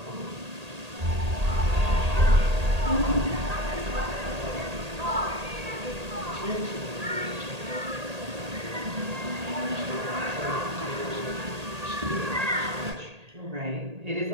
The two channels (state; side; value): late; left; 1.8 ms